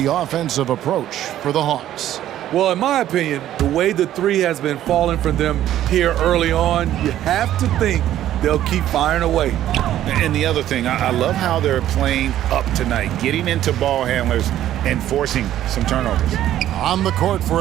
offensive approach for the Hawks. Well, in my opinion, the way the three has been falling from them here early on, you have to think they'll keep firing away. And the other thing, I love how they're playing up tonight, getting into ball handlers and forcing some turnovers. On the court for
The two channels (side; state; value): left; quieter; 12.4 dB